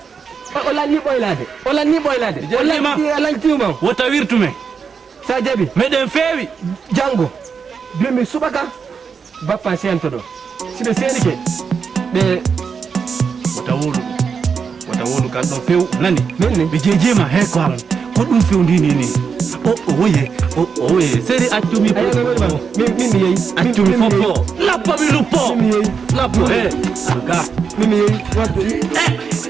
o lanni ɓoylade o lanni tiwma wotta wirtume sa jaɓi meɗen feewi janggo bimi subaka bappa sento ɗo siɓe seenike ɓe wata wolu kan ɗo few nani nonni ɓe jejema he ko halan ko ɗum fewndini ni o woye seri accumi min mi yeyi accumi foppo lappo mi luppo lappo aga min yeyi wadde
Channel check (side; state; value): left; quieter; 6.0 dB